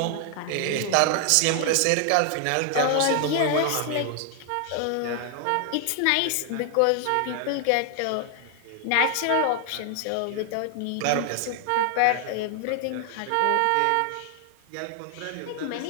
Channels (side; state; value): both; different; correlation 0.00